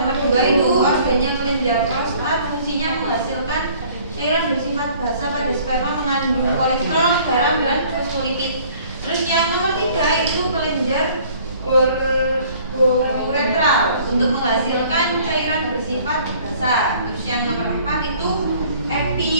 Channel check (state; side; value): inverted; both; correlation -0.55